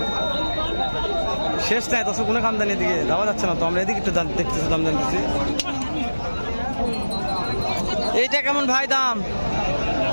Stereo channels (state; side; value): inverted; both; correlation -1.00